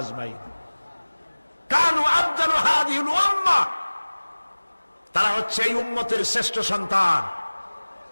কানু আফদালু হাযিহিল উম্মাহ, তারা হচ্ছে এই উম্মতের শ্রেষ্ঠ সন্তান।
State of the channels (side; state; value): both; inverted; correlation -1.00